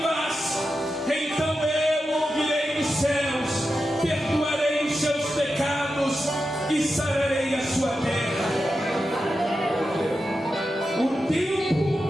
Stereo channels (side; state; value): both; normal; correlation 0.90